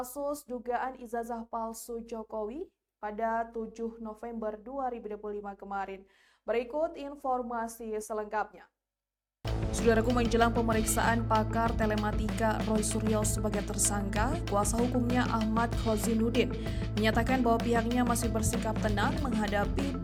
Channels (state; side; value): identical; both; correlation 1.00